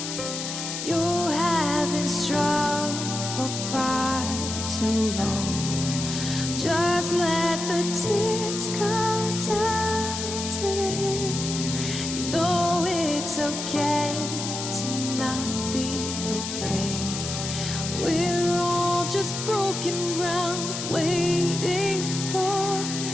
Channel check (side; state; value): left; noise; hiss, 5 dB below the sound